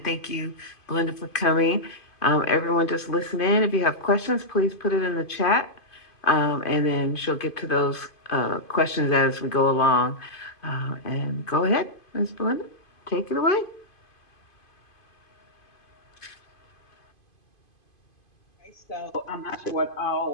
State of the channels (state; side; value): late; right; 2.5 ms